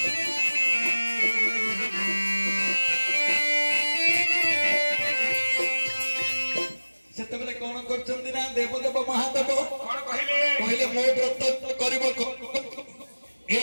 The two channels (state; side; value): inverted; both; correlation -1.00